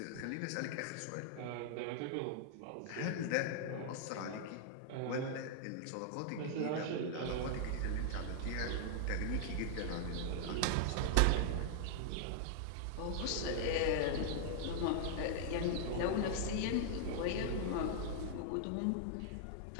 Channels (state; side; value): different; both; correlation -0.01